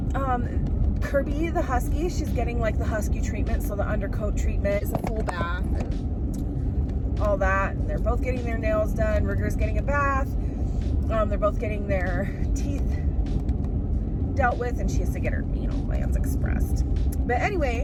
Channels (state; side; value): identical; both; correlation 1.00